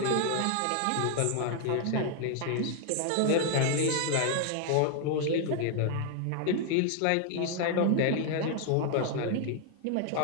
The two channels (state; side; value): different; both; correlation 0.00